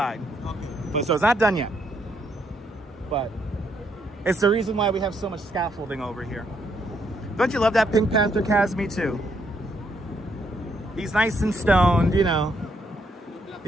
But, so it's not done yet. But it's the reason why we have so much scaffolding over here. Don't you love that Pink Panther, Kaz? Me too. He's nice and stoned, you know.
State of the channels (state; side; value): normal; both; correlation 0.73